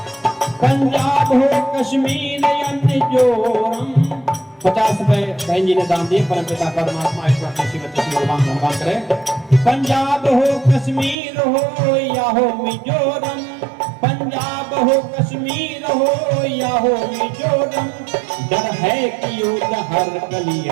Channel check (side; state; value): left; drops out; at 11.2 s